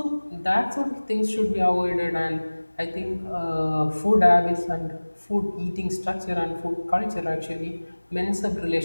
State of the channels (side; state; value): both; inverted; correlation -1.00